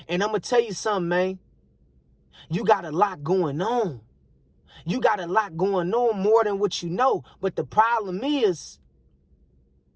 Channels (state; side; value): identical; both; correlation 1.00